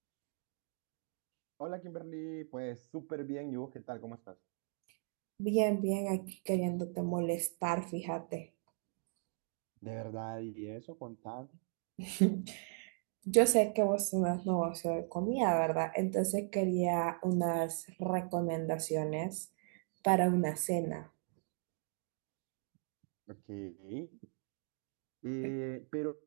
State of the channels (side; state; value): left; silent; 53 dB below the other